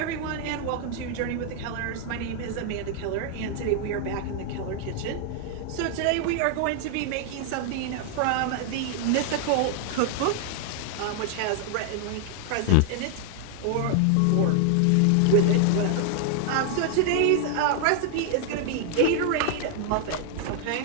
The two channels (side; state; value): both; different; correlation 0.00